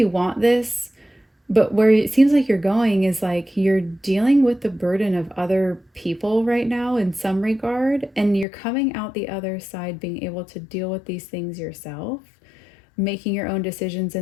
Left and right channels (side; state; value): right; drops out; at 8.5 s